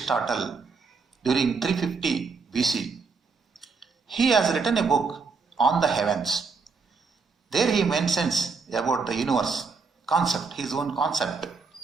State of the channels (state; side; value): quieter; left; 4.8 dB